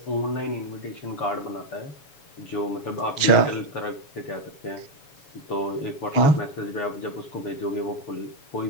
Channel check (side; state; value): right; late; 7.0 ms